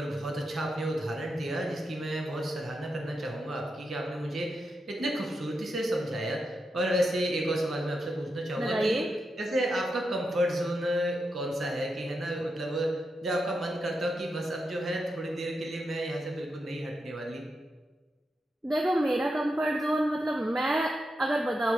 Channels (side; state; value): both; normal; correlation 0.86